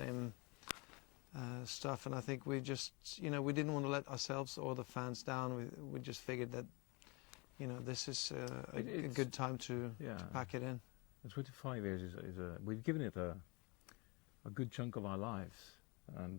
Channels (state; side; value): quieter; right; 28.4 dB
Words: stuff. And I think we just, we didn't want to let ourselves or the fans down. We just figured that, this is a good time to pack it in. 25 years we've given it a good chunk of our lives,